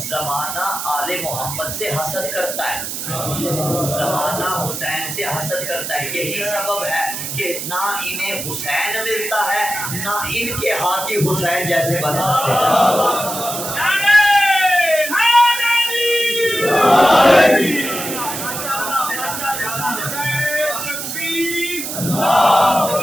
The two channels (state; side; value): noise; right; hiss, 5 dB below the sound